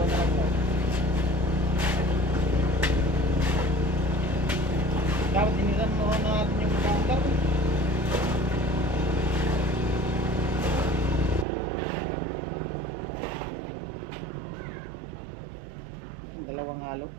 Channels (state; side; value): drops out; left; at 11.5 s